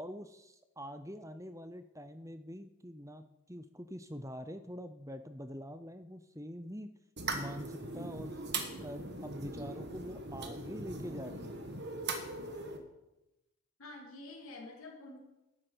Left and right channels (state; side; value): normal; both; correlation 0.46